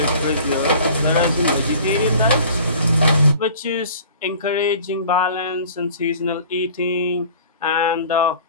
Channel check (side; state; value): both; inverted; correlation -0.46